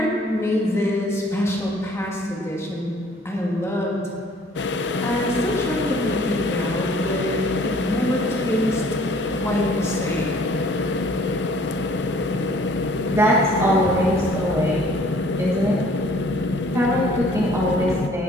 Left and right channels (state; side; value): normal; both; correlation 0.56